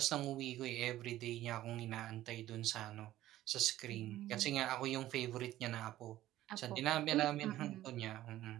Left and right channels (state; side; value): quieter; left; 14.4 dB